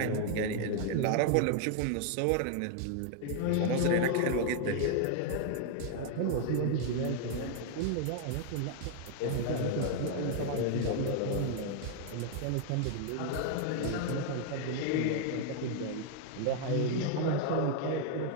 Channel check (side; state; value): both; different; correlation 0.00